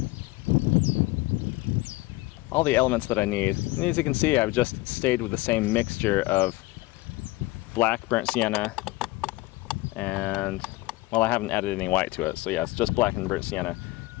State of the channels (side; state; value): right; quieter; 20.6 dB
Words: all the elements that I need. And as you can see, I've just stayed with the same mixture of black burnt sienna and, well, I haven't added any white to it, so yeah, it's just black and burnt sienna